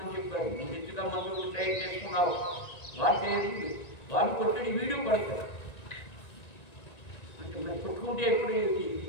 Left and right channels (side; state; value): right; late; 1.9 ms